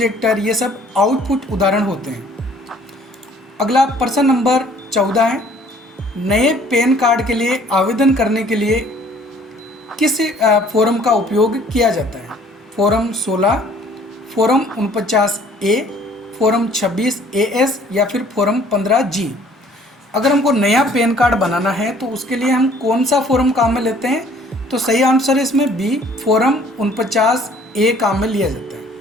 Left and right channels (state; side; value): normal; both; correlation 0.56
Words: ये सब आउटपुट उदाहरण होते हैं। अगला प्रश्न नंबर 14 है, नए पैन कार्ड के लिए आवेदन करने के लिए किस फॉर्म का उपयोग किया जाता है? Form 16, form 49A, form 26AS या फिर फॉर्म 15G? अगर हमको नया पैन कार्ड बनाना है तो उसके लिए हम कौन सा फॉर्म काम में लेते हैं? तो सही आंसर है इसमें बी, फॉर्म 49A काम में लिया जाता है।